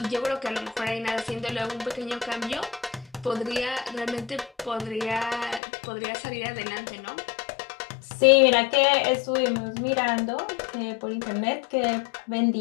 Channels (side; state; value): right; drops out; at 5.6 s